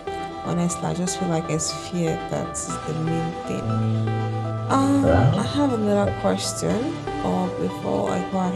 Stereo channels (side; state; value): both; identical; correlation 1.00